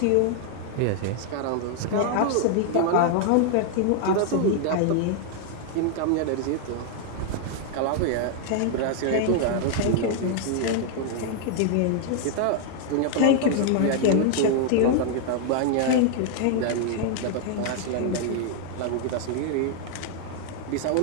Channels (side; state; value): both; different; correlation 0.00